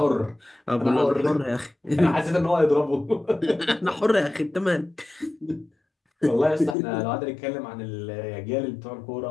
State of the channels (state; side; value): drops out; right; at 6.8 s